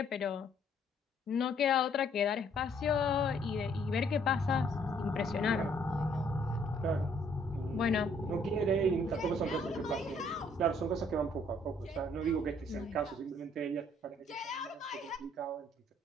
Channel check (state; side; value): normal; both; correlation 0.64